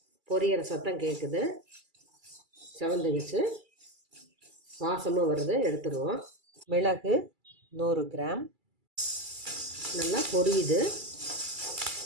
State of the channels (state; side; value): late; left; 2.3 ms